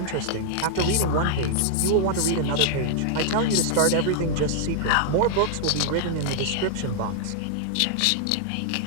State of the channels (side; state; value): both; different; correlation -0.01